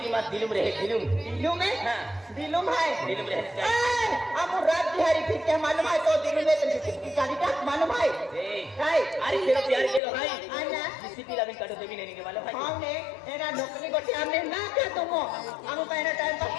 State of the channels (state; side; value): drops out; right; at 10.0 s